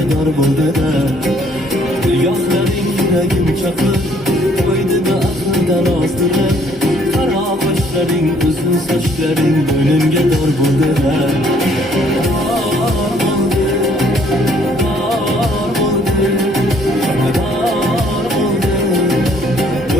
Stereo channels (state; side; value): normal; both; correlation 0.63